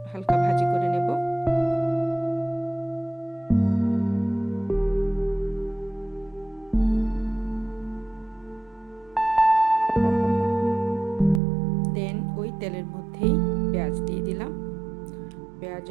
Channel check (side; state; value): left; drops out; at 11.4 s